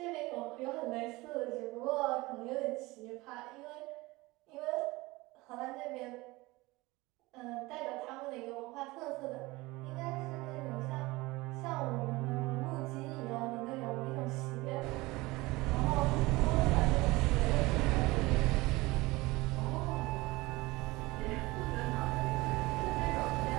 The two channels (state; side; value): quieter; left; 21.4 dB